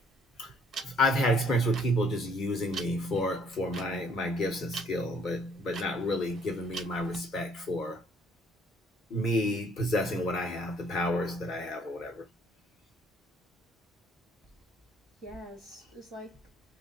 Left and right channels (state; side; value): normal; both; correlation 0.62